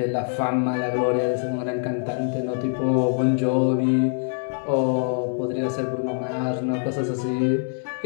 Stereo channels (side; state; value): right; silent; 63 dB below the other